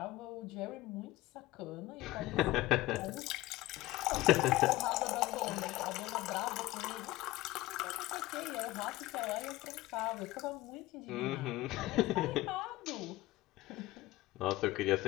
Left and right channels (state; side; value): quieter; right; 17.7 dB